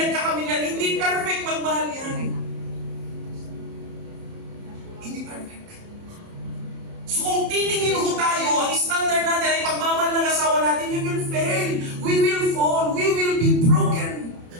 yan. Hindi perfect magmahal yan. Hindi perfect. So kung titingin ho tayo, ang standard natin ay pagmamahal ng asawa natin, we will fail, we will fall, we will be broken.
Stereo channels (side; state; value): left; late; 30 ms